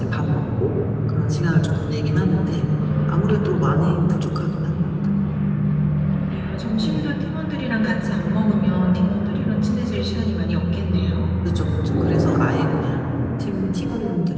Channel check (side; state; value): both; identical; correlation 1.00